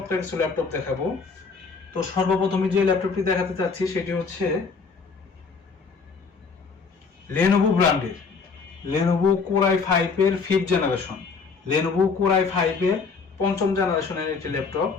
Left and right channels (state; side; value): quieter; right; 4.9 dB